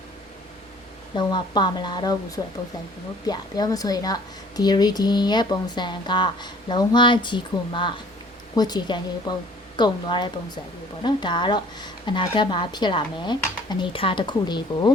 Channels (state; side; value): normal; both; correlation 0.53